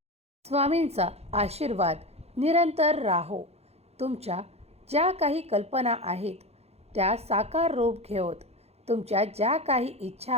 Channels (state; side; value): late; left; 0.30 ms